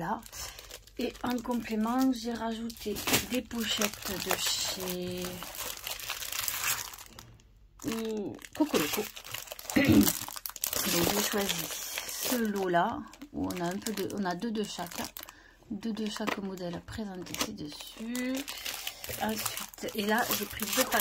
Et en complément, j'ai rajouté des pochettes de chez Cocoloco. Donc, j'ai choisi ce lot-là, où on a on a deux de chaque. Deux de chaque modèle présentés ci-dessus. Ensuite, et là, j'ai pris 2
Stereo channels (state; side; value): identical; both; correlation 1.00